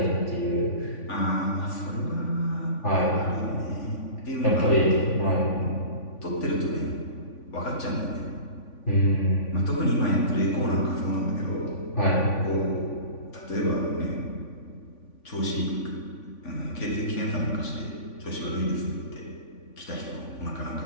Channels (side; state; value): right; late; 3.5 ms